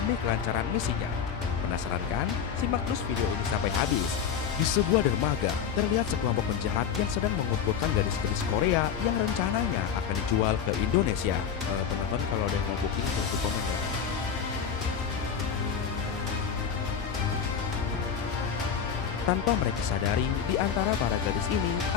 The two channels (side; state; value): right; quieter; 7.6 dB